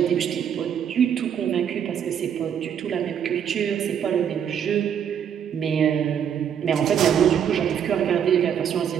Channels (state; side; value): quieter; left; 8.5 dB